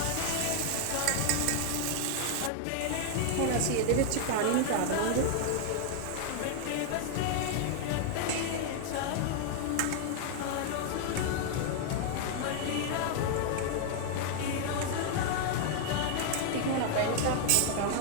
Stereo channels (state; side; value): different; both; correlation 0.00